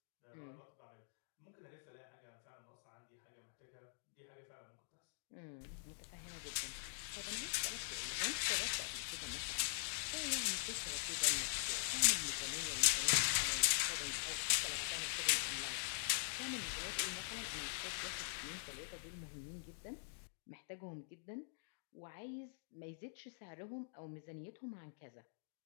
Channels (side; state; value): right; silent; digital silence